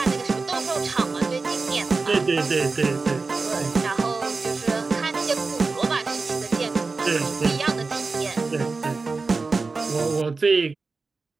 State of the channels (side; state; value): left; quieter; 4.0 dB